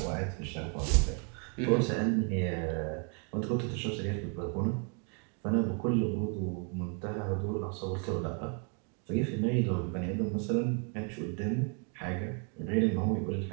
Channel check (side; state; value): left; quieter; 39.6 dB